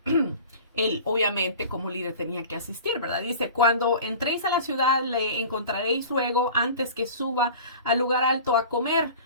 él obviamente como líder tenía que asistir, ¿verdad? Dice, cuando entréis a la ciudad le encontraréis luego antes que suba al lugar alto a comer,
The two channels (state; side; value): inverted; both; correlation -0.39